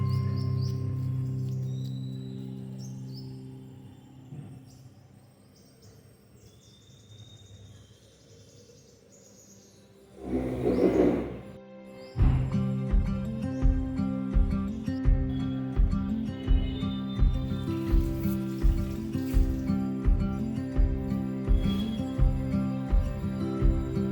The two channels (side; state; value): both; identical; correlation 1.00